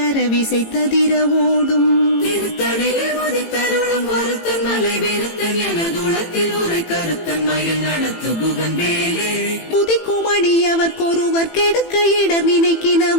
அரவிசைத்ததிர ஓடும் திருத்தணிலே உதித்தருளும் ஒருத்தன் மலை விருத்தன் எனதுளத்தில் உரை கருத்தன் மயில் நடத்து குகன் வேலே குதிக்கும் அடியவர்க்கொருவர் கெடுக்க இடர்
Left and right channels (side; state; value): right; late; 18 ms